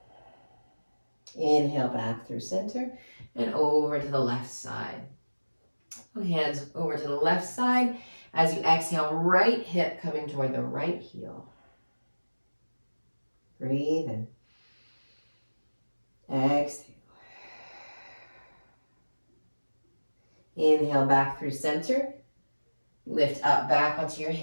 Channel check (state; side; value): inverted; both; correlation -1.00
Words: Inhale back through center and over to the left side. Hands over to the left side. As you exhale, right hip coming toward the right heel. Breathe in. Exhale. Inhale back through center. Lift up back onto your